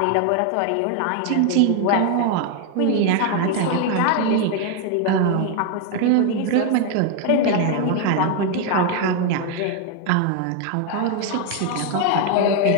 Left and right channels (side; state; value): both; different; correlation 0.01